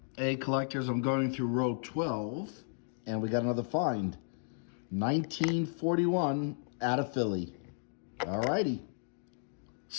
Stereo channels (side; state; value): right; silent; digital silence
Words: Hey, collectors, I'm going through row 12, and we got another find. 1941 out of Philly. All righty.